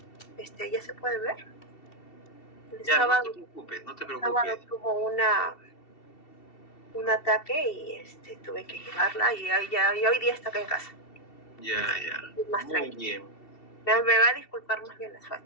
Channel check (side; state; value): right; late; 2.7 ms